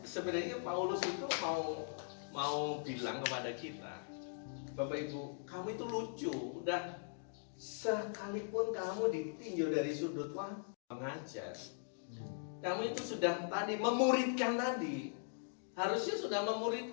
sebenarnya Paulus itu mau bilang kepada kita, Bapak Ibu, kamu itu lucu, udah sekalipun kamu ditinjau dari sudut mengajar, kamu itu sudah tadi memuridkan tadi, harusnya sudah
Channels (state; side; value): silent; right; digital silence